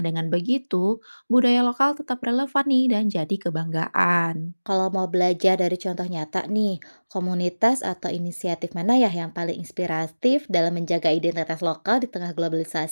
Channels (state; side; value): inverted; both; correlation -1.00